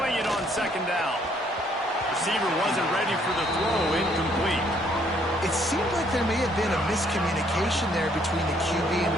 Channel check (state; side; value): normal; both; correlation 0.66